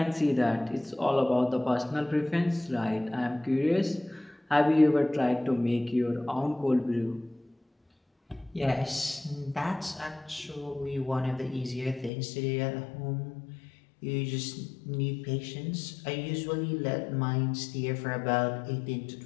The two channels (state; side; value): drops out; right; at 12.1 s